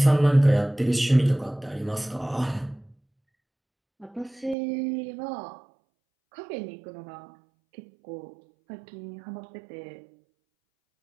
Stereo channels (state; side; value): drops out; left; at 4.5 s